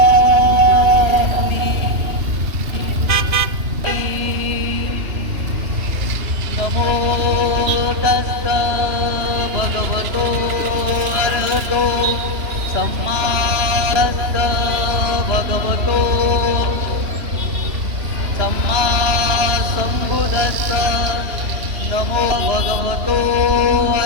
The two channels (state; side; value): late; left; 3.1 ms